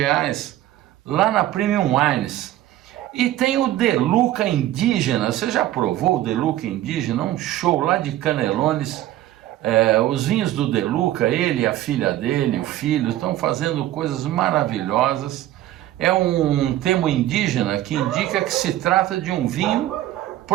lá na Premium Wines. E tem o De Luca Indígena. Você já provou o De Luca Indígena? Um show lá de Canelones. Os vinhos do De Luca, ele, a filha dele, o filho, estão fazendo coisas maravilhosas. É um termo indígena que indica que se trata de um vinho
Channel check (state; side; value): quieter; left; 14.0 dB